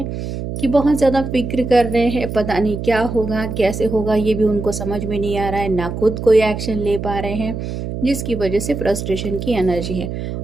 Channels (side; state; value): right; noise; hum, 6 dB below the sound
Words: कि बहुत ज़्यादा फिक्र कर रहे हैं, पता नहीं क्या होगा, कैसे होगा, ये भी उनको समझ में नहीं आ रहा है, ना खुद कोई एक्शन ले पा रहे हैं, जिसकी वजह से फ्रस्ट्रेशन की एनर्जी है।